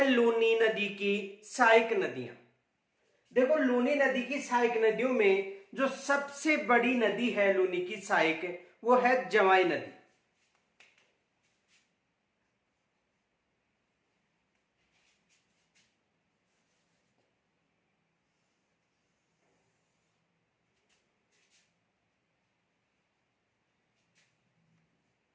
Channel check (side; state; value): both; identical; correlation 1.00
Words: लूनी नदी की सहायक नदियां। देखो, लूनी नदी की सहायक नदियों में जो सबसे बड़ी नदी है लूनी की सहायक, वो है जवाई नदी।